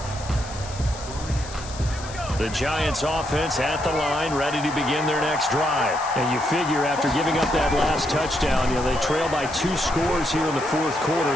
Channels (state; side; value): noise; left; hiss, 14 dB below the sound